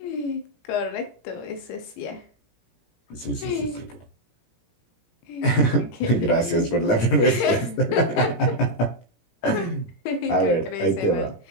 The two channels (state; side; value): late; right; 17 ms